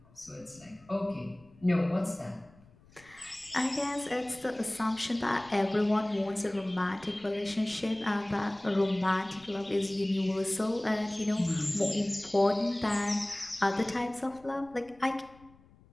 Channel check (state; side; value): noise; left; rumble, 27 dB below the sound